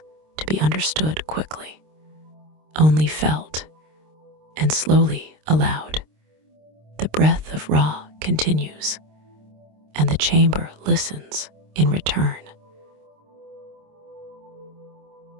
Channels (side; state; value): left; late; 26 ms